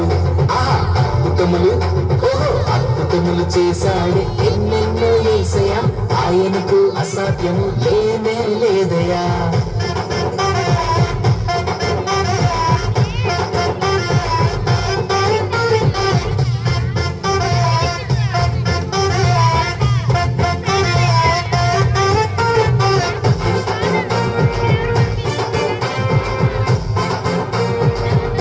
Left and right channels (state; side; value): identical; both; correlation 1.00